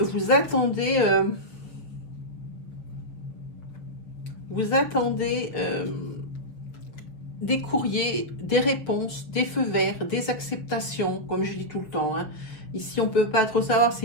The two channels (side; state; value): right; late; 6.7 ms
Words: vous attendez des courriers, des réponses, des feux verts, des acceptations, comme je dis tout le temps, hein. Ici, on ne peut pas trop savoir, c'est